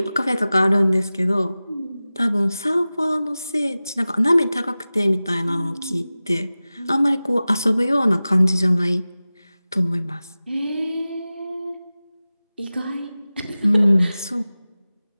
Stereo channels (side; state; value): both; inverted; correlation -0.97